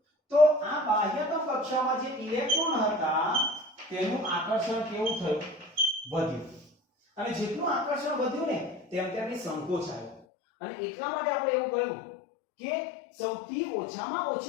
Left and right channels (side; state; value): right; drops out; at 10.2 s